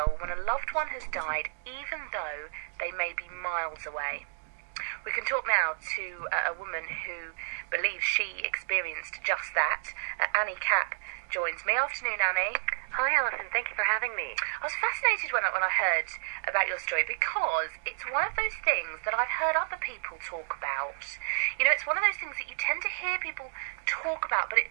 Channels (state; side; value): silent; left; digital silence